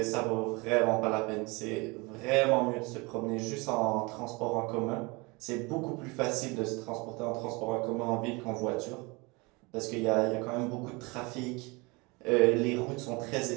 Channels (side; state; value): left; quieter; 26.4 dB